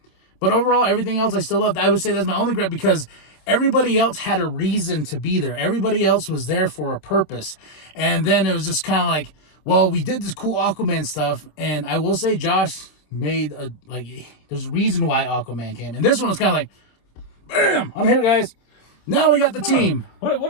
But overall, everything else I still loved. I would say that's my only gripe because everybody else had a reason to be there. Everybody else was there for a purpose. And then it was just kind of like, well, we did this cool Aquaman stuff. And I will say Josh made there's a reason why Aquaman came. And this one was kind of like, bam, I'm here, guys. Now we got the team. What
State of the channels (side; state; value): right; late; 26 ms